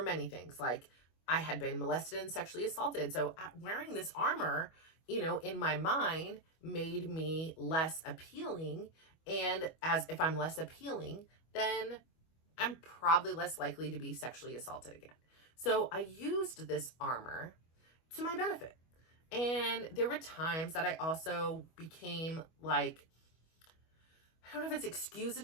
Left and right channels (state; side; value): late; right; 25 ms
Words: many things. Like I had been molested and sexually assaulted. So wearing this armor, in my mind made me less appealing. And as if I'm less appealing, then I'm probably less likely to be sexually assaulted again. So I used this armor to my benefit. And there were times that I also became like, I don't know if it's